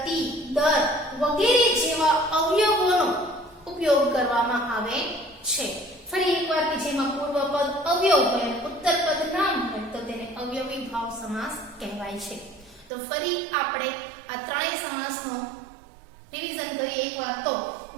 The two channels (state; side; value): drops out; left; at 12.9 s